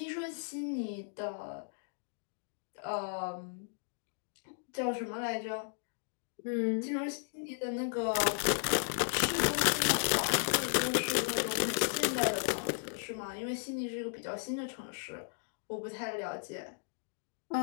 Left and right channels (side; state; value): right; silent; digital silence